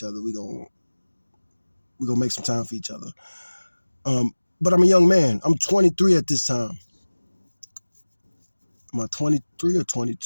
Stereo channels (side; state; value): both; inverted; correlation -1.00